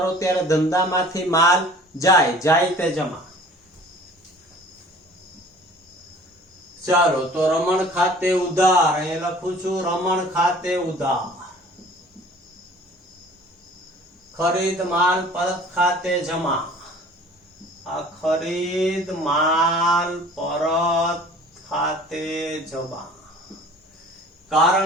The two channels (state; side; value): normal; both; correlation 0.48